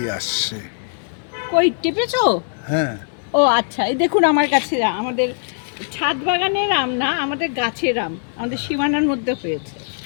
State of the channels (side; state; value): right; silent; digital silence